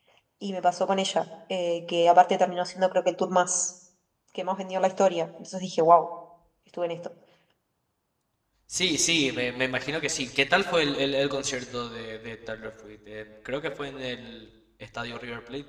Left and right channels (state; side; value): identical; both; correlation 1.00